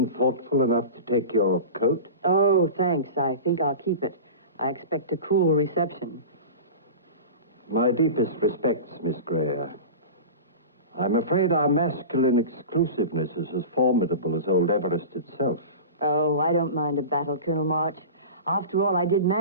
thoughtful enough to take your coat? Oh, thanks. I think I'll keep it. I expect a cool reception. My deepest respects, Miss Gray. I'm afraid our masculine exclusiveness is as formidable as old Everest itself. Oh, I don't mind a battle, Colonel March. After all, I did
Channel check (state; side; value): inverted; both; correlation -0.31